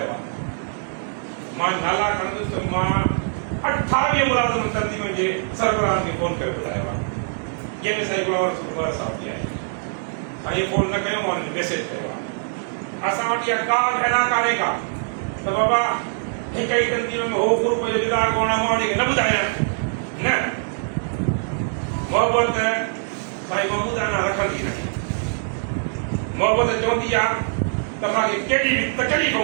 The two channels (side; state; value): left; silent; digital silence